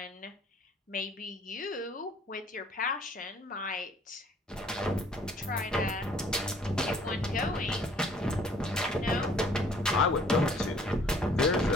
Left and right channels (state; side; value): normal; both; correlation 0.58